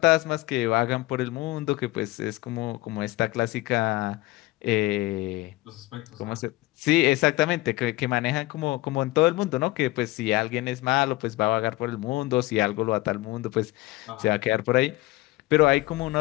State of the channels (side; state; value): right; quieter; 19.3 dB